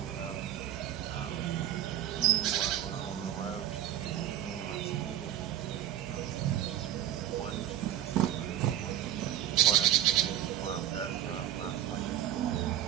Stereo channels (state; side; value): quieter; left; 11.7 dB